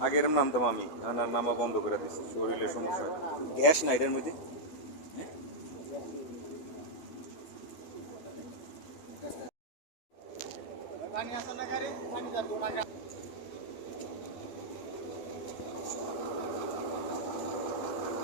আগের নামতাম আমি, নামা বন্ধ করে দিচ্ছি, শরীরের সমস্যা, গ্যাস না এটার মধ্যে।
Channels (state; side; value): late; right; 12 ms